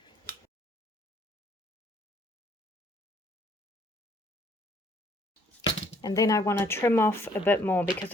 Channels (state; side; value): normal; both; correlation 0.63